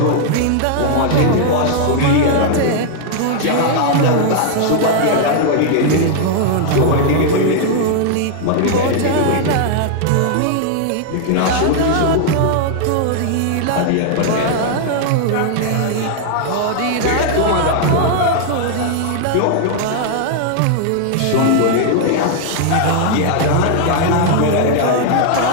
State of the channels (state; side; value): different; both; correlation 0.00